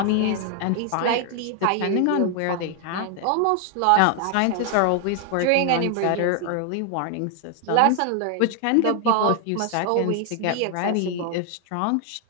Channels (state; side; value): different; both; correlation 0.00